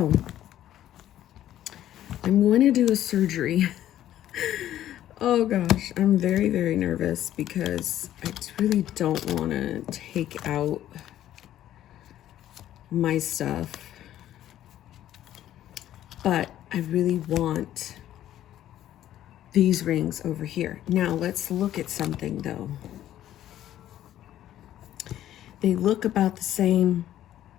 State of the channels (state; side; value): quieter; right; 12.3 dB